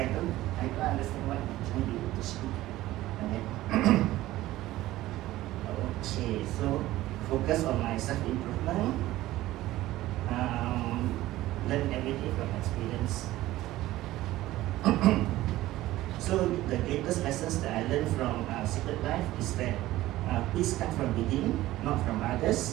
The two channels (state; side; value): quieter; left; 16.1 dB